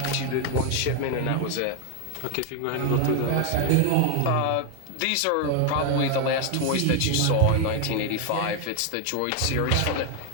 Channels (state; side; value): different; both; correlation 0.00